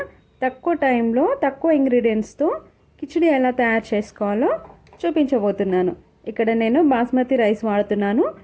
తక్కువ టైంలో తక్కువ ఇంగ్రీడియంట్స్తో కిచిడి ఎలా తయారు చేసుకోవాలో చూపించబోతున్నాను. ఇక్కడ నేను బాస్మతి రైస్ వాడుతున్నాను,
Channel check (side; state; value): both; identical; correlation 1.00